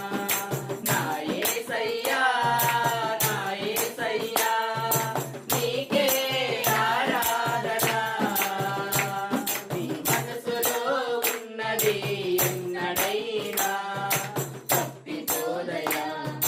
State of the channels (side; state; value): both; identical; correlation 1.00